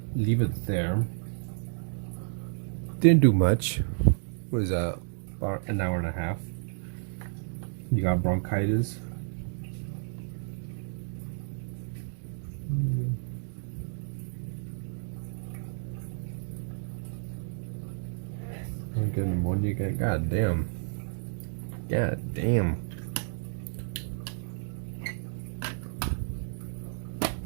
leave it there. Didn't do much. What is that? About an hour and a half. You got bronchitis. I'm getting pneumonia again. God damn. God damn.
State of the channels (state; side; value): silent; left; digital silence